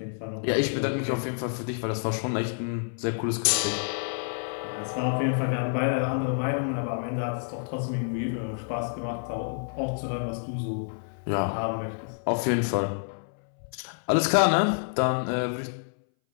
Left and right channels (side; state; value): right; silent; 59 dB below the other